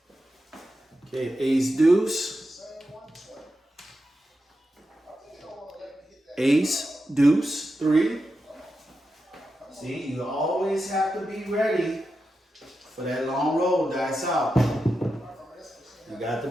Okay, ace deuce. Ace deuce 3. See, you always have to be ready for that long roll. Dice out. You got to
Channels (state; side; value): normal; both; correlation 0.89